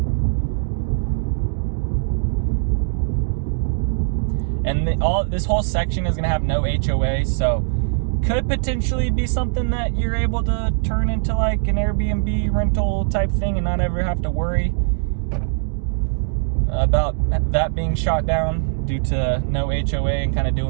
And this whole section is gonna have no HOA, so could potentially be something that you're able to turn into like an Airbnb rental type thing and not ever have to worry about that being shot down due to no HOA and kind of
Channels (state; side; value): silent; left; digital silence